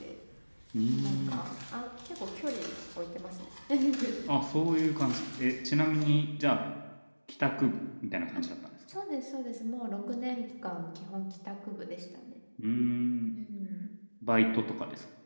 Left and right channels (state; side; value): inverted; both; correlation -1.00